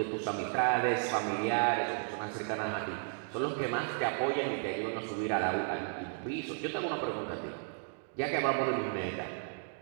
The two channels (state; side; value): silent; left; 55 dB below the other